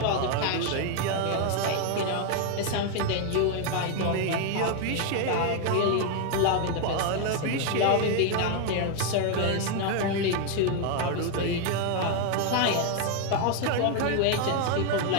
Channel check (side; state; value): both; different; correlation 0.01